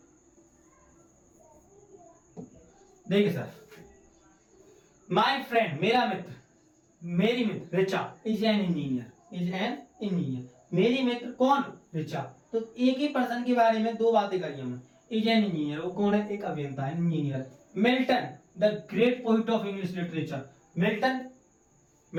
देखिए सर, माय फ्रेंड मेरा मित्र, मेरी मित्र Richa is an engineer, is an engineer. मेरी मित्र कौन? रिचा। तो एक ही पर्सन के बारे में दो बातें करी हमने। इज एन इंजीनियर, वो कौन है? एक अभियंता है, engineer. Milton the great poet of English literature. Milton,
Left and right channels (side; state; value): both; identical; correlation 1.00